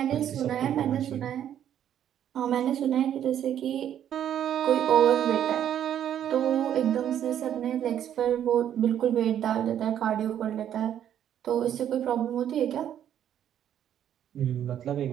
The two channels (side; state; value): left; quieter; 10.2 dB